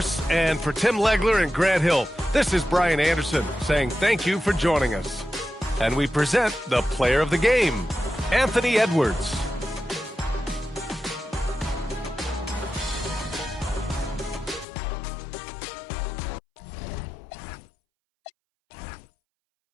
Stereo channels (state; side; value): drops out; right; at 14.7 s